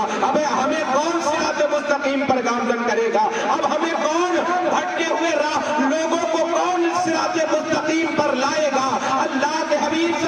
اب ہمیں کون صراط مستقیم پر گامزن کرے گا؟ اب ہمیں کون بھٹکے ہوئے راہ لوگوں کو کون صراط مستقیم پر لائے گا؟ اللہ کے حبیب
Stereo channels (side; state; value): both; identical; correlation 1.00